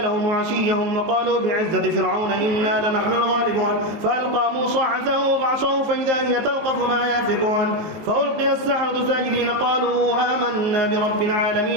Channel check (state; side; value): late; left; 18 ms